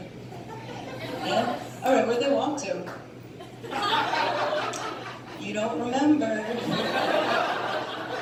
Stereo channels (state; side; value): identical; both; correlation 1.00